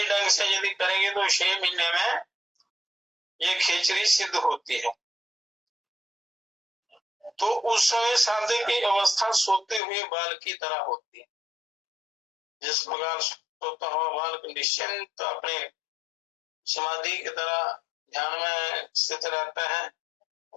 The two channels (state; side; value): drops out; right; at 9.8 s